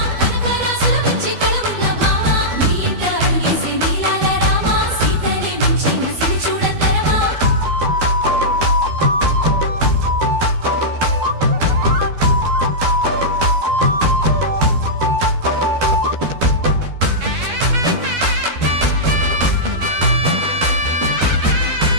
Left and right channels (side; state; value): left; late; 12 ms